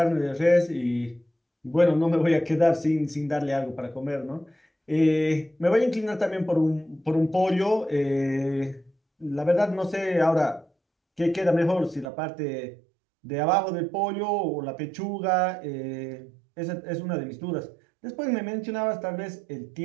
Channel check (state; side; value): drops out; left; at 12.1 s